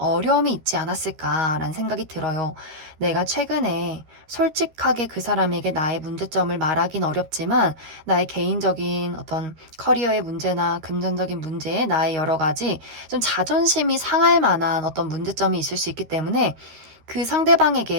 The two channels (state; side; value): late; left; 13 ms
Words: 있지 않았을까라는 생각이 들어요. 내가 최근에 솔직하게 그 사람에게 나의 문제점을 말하긴 어렵지만 나의 개인적인 어떤 커리어의 문제나 금전적인 문제, 나의 여러 가지 좀 자존심이 상할 만한 어떤 문제점이 있을 수 있기 때문에 그